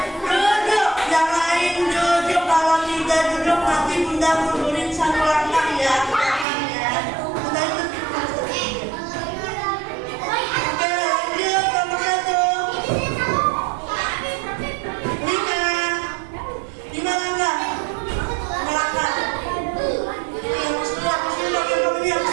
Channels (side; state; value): left; drops out; at 6.5 s